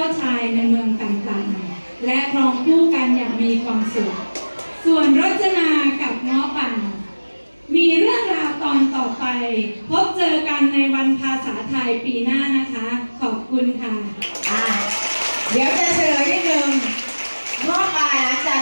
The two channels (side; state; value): both; inverted; correlation -1.00